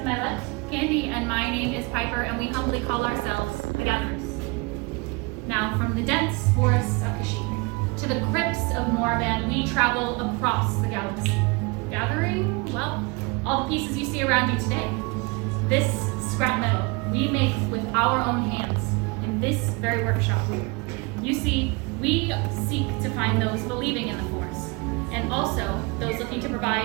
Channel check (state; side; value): quieter; left; 28.5 dB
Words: my left, Candy, and my name is Piper, and we humbly call ourselves the Gatherers. Now, from the dense forests of Kashyyyk to the crypts of Morvan, we travel across the galaxy, gathering, well, all the pieces you see around you today. This scrap metal we make with our own hands in this very workshop. You see, we seek to find those believing in the Force, and also those looking to